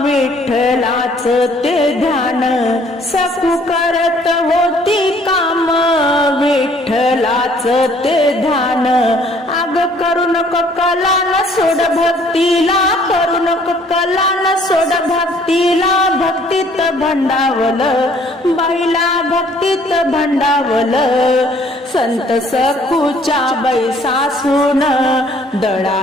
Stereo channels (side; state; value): both; normal; correlation 0.59